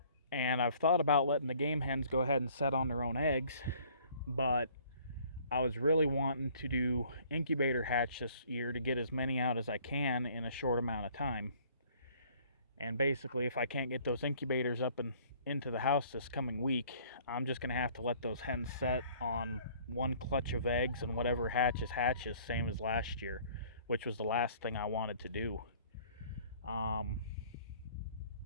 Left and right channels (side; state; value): both; inverted; correlation -0.56